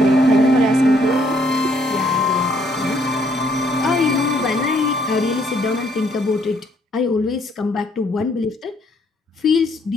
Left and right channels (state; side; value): normal; both; correlation 0.67